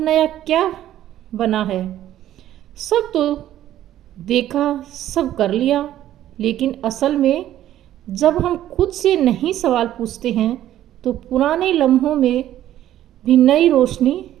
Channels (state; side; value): quieter; left; 12.5 dB